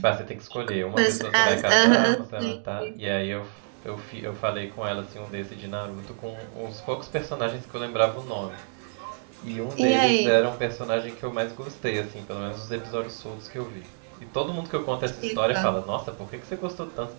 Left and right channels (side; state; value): left; silent; digital silence